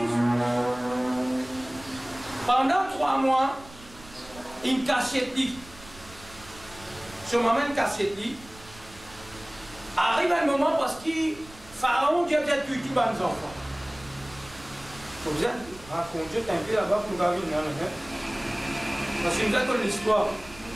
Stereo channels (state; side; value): noise; right; rumble, 20 dB below the sound